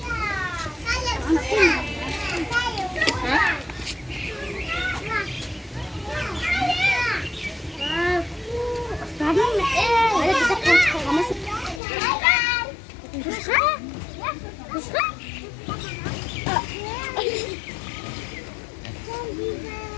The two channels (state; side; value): drops out; right; at 11.8 s